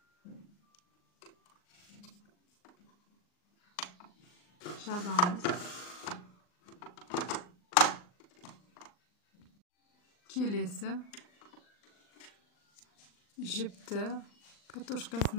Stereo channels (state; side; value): late; right; 39 ms